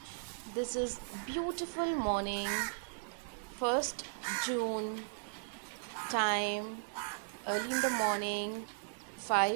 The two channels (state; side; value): silent; left; digital silence